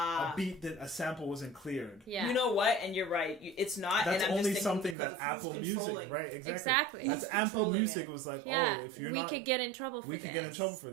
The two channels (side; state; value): left; drops out; at 5.0 s